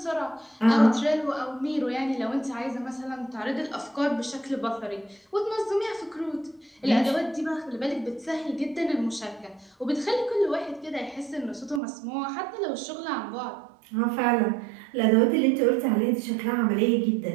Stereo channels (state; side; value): drops out; left; at 11.8 s